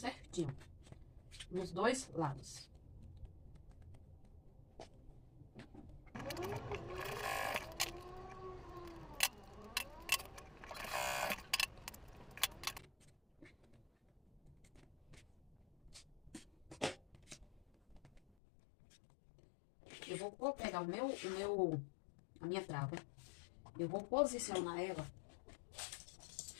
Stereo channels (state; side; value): drops out; right; at 18.2 s